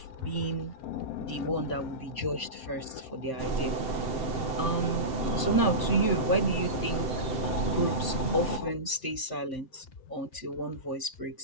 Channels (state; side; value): late; right; 7.7 ms